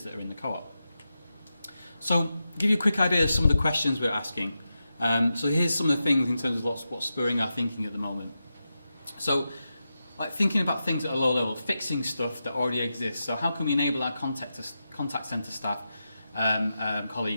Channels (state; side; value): inverted; both; correlation -0.90